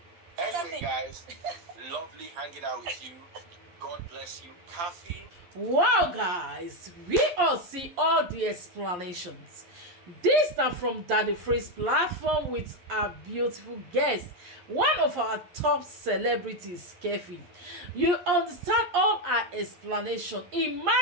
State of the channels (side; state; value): left; late; 11 ms